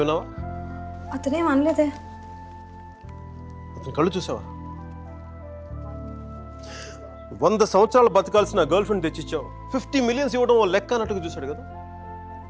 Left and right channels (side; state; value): both; identical; correlation 1.00